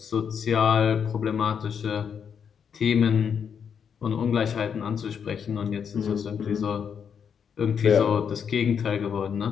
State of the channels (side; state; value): right; quieter; 7.3 dB